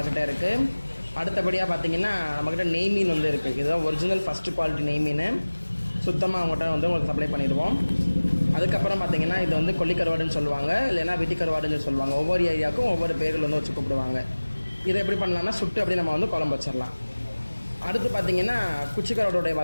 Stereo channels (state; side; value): inverted; both; correlation -1.00